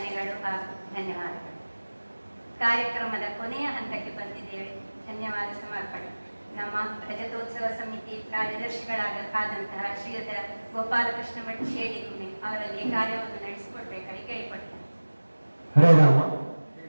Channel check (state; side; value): inverted; both; correlation -1.00